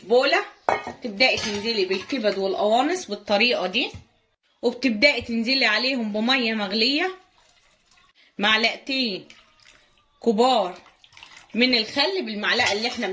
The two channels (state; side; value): identical; both; correlation 1.00